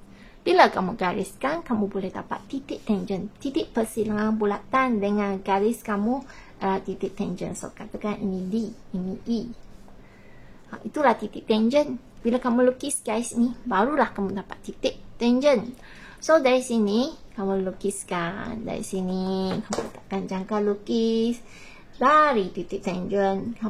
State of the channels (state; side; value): identical; both; correlation 1.00